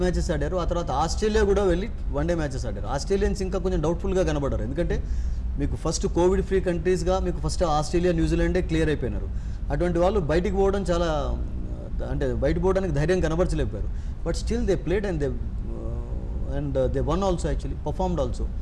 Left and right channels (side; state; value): both; identical; correlation 1.00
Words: మ్యాచెస్ ఆడారు. ఆ తర్వాత ఆస్ట్రేలియా కూడా వెళ్ళి వన్డే మ్యాచెస్ ఆడారు. ఆస్ట్రేలియన్స్ ఇంకా కొంచెం డౌట్ఫుల్గా కనబడ్డారు, ఎందుకంటే మీకు ఫస్ట్ కోవిడ్ ఫ్రీ కంట్రీస్గా మీకు ఫస్ట్ ఆస్ట్రేలియా, న్యూజిలాండే క్లియర్ అయిపోయినారు. అటువంటి వాళ్ళు బయటికి పోవడం చాలా అంటే బయటకు పోవడానికి ధైర్యం కనబరచలేకపోయారు. But still they played and they won also, actually performed also.